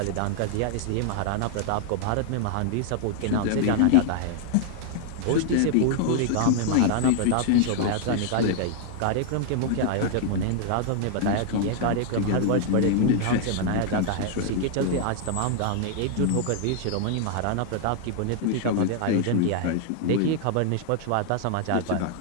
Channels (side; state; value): both; different; correlation 0.00